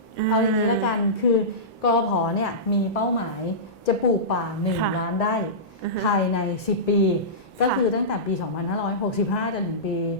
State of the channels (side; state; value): both; normal; correlation -0.18